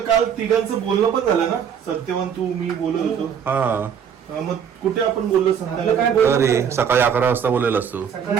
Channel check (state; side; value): quieter; left; 7.8 dB